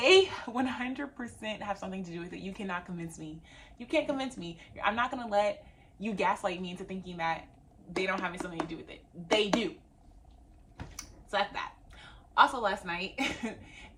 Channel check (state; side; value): identical; both; correlation 1.00